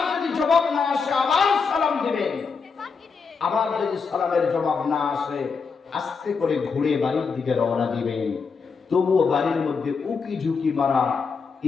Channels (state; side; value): quieter; right; 5.3 dB